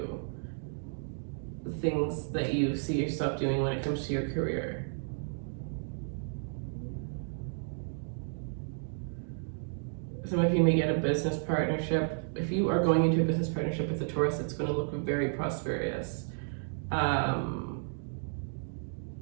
the things that you see yourself doing when it comes to your career. Some of you may get a business partnership. If you are going into a business partnership with a Taurus, it's going to look very prosperous. Yeah.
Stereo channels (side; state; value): left; silent; digital silence